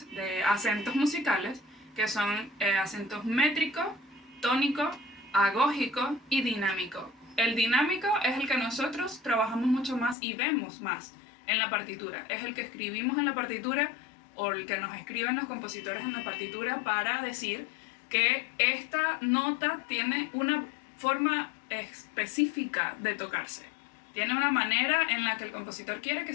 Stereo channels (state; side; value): drops out; right; at 10.2 s